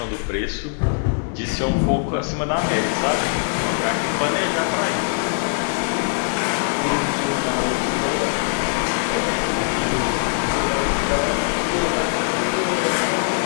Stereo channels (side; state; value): right; silent; 61 dB below the other